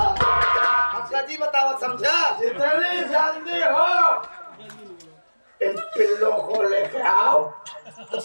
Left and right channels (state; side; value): inverted; both; correlation -1.00